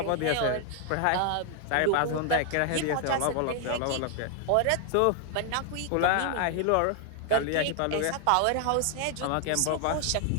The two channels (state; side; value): different; both; correlation 0.00